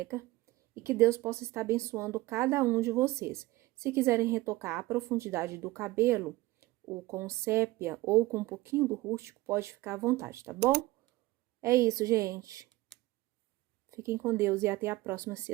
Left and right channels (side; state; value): left; quieter; 18.9 dB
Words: E que Deus possa estar abençoando cada um de vocês. Se quiserem retocar a profundidade do cabelo, ou com sépia, ou com um pouquinho do rústico, pode ficar à vontade, tá bom? É isso, gente. Fiquem com Deus e até a próxima, se